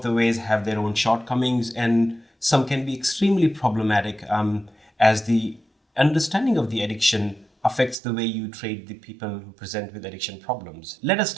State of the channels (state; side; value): drops out; left; at 8.0 s